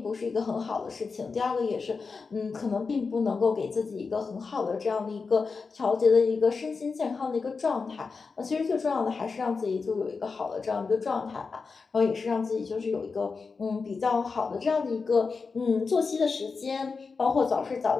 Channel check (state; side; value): quieter; right; 4.7 dB